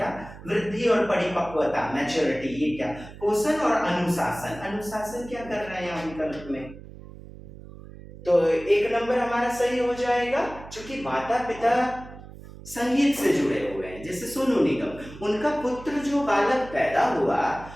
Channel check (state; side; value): noise; right; hum, 16 dB below the sound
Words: वृद्धि और परिपक्वता, मैच्योरिटी, ये क्या, पोषण और अनुशासन। अनुशासन क्या कर रहे हैं यहाँ विकल्प में, तो 1 नंबर हमारा सही हो जाएगा, क्योंकि माता पिता संगीत से जुड़े हुए हैं। जैसे सोनू निगम, उनका पुत्र जो बालक पैदा हुआ